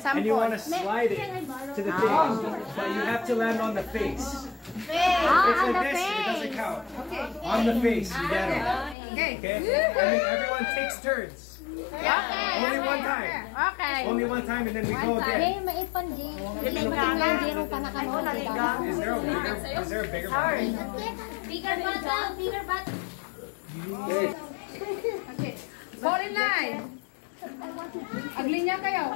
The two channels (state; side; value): drops out; right; at 9.0 s